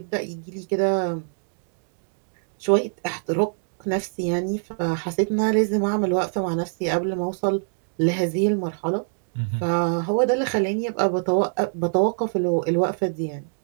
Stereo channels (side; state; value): left; silent; digital silence